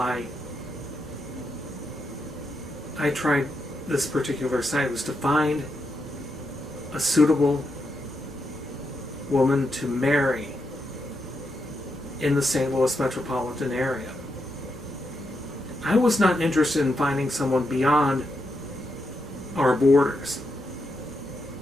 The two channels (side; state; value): both; normal; correlation 0.83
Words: I tried this particular site was to find a suitable woman to marry in the St. Louis metropolitan area. I was not interested in finding someone beyond our borders.